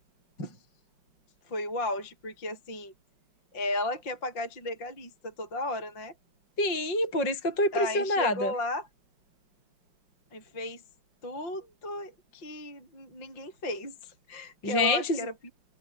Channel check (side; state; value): right; late; 5.4 ms